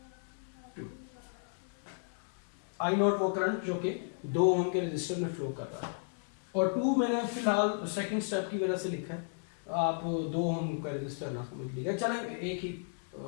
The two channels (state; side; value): silent; right; digital silence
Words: वो करंट जो कि 2 ओम के रजिस्टर में फ्लो कर रहा है, और 2 मैंने फिलहाल सेकंड स्टेप की वजह से लिखा है, आप 2 ओम का रजिस्टर ना समझ लीजिएगा, चले एक ही